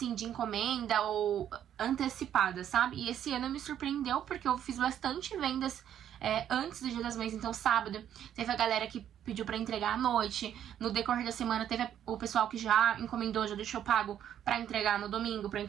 de encomenda ou antecipada, sabe? E esse ano me surpreendeu porque eu fiz bastante vendas antes do Dia das Mães. Então sábado teve a galera que pediu pra entregar à noite. No decorrer da semana teve o pessoal que já encomendou, já deixou pago pra entregar no domingo, pra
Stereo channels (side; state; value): left; quieter; 10.2 dB